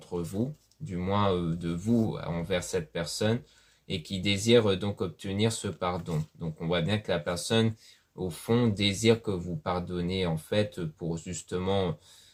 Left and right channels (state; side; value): identical; both; correlation 1.00